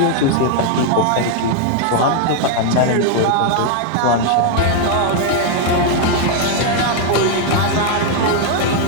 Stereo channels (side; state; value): both; different; correlation 0.00